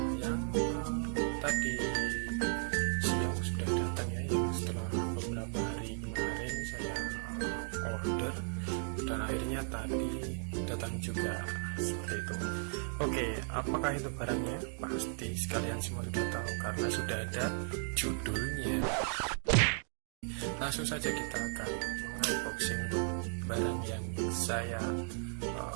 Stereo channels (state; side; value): silent; left; 54 dB below the other